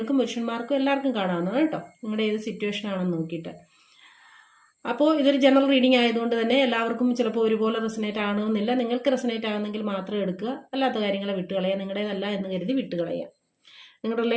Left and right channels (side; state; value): both; identical; correlation 1.00